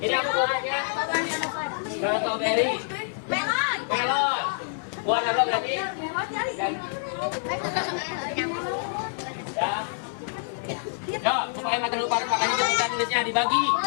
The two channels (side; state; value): right; silent; digital silence